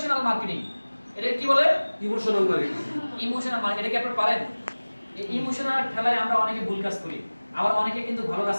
মার্কেটিং। এটা কি বলে? Emotional marketing. ইমোশনাল মার্কেটিং, এটা কি আপনি পারেন? এই ইমোশনাল ঠেলায় আমরা অনেকে ভুল কাজ করি, আবার অনেকে কিন্তু ভালো কাজ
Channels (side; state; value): both; inverted; correlation -1.00